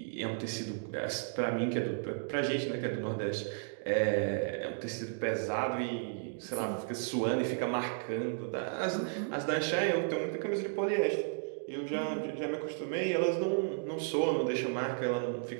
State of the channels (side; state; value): left; silent; digital silence